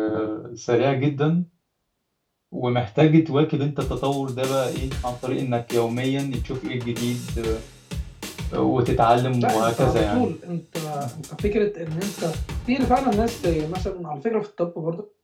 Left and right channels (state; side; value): identical; both; correlation 1.00